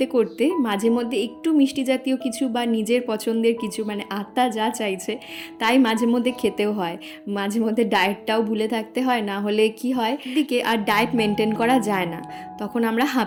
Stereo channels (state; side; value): identical; both; correlation 1.00